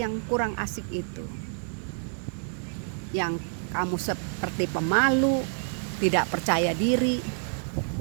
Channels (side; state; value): left; silent; digital silence